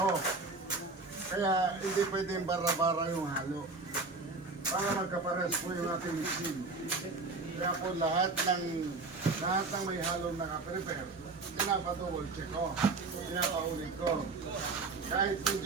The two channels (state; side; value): quieter; left; 3.7 dB